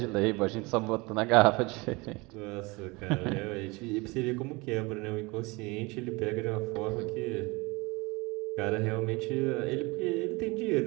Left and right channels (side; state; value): left; quieter; 25.2 dB